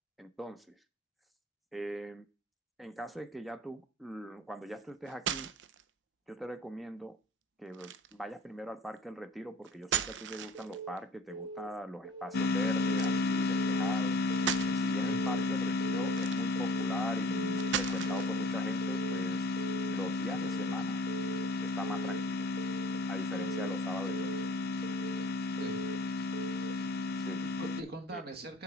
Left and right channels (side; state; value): both; normal; correlation 0.47